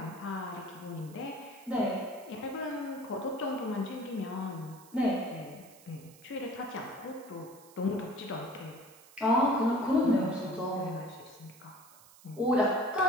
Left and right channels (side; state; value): right; noise; hiss, 23 dB below the sound